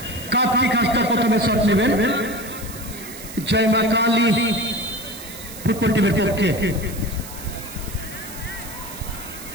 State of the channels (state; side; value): noise; right; hiss, 13 dB below the sound